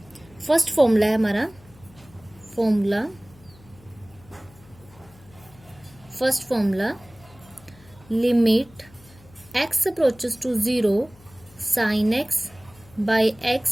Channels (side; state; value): left; noise; hum, 24 dB below the sound